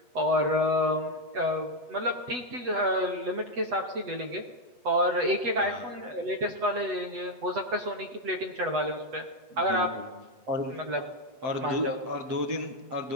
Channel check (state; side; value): late; left; 8.0 ms